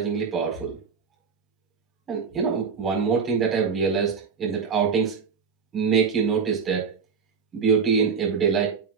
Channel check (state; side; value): quieter; left; 5.9 dB